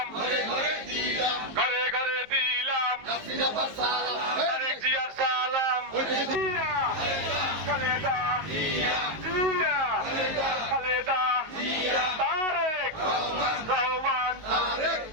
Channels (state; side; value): late; left; 18 ms